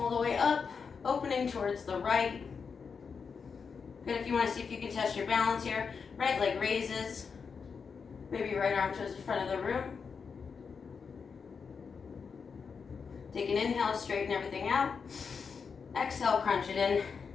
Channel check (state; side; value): quieter; right; 5.7 dB